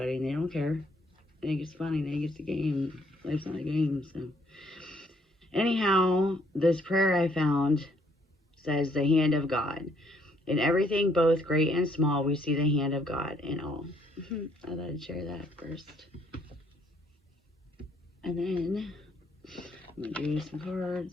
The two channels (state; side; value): normal; both; correlation 0.67